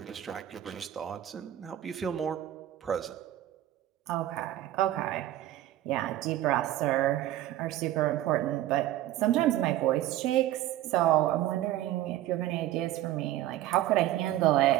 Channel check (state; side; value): quieter; left; 13.8 dB